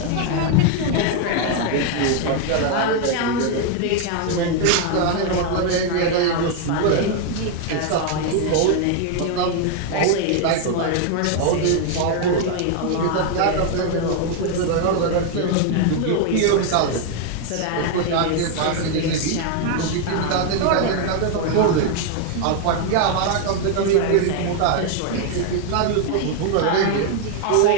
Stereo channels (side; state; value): both; different; correlation 0.00